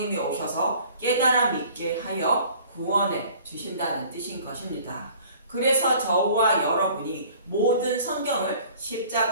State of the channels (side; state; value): both; inverted; correlation -0.50